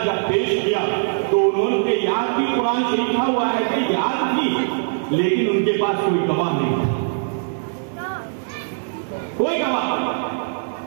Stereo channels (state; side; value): silent; left; 65 dB below the other